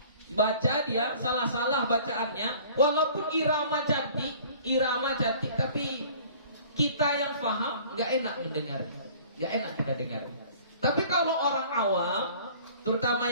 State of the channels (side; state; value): both; inverted; correlation -0.50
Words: Baca dia salah-salah bacaannya, walaupun irama cantik, tapi kita yang paham nggak enak mendengar, nggak enak kita dengar. Tapi kalau orang awam, terutama